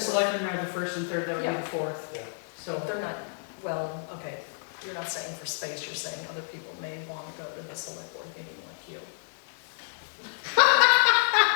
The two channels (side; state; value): right; silent; digital silence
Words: are the first and third, that would be Yeah. the fourth. Yeah. So, They're not, well, okay, you're not saying for space, you're saying other people may want to go to the select board meeting like you.